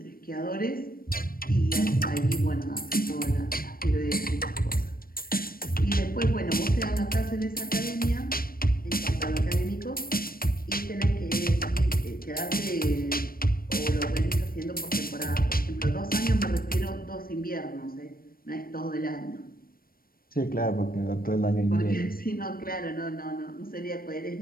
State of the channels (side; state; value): right; late; 0.43 ms